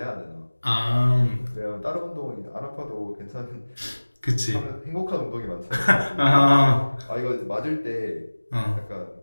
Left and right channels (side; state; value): both; inverted; correlation -1.00